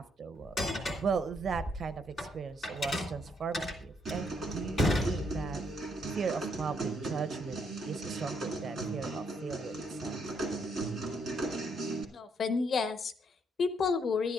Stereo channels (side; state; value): both; normal; correlation 0.73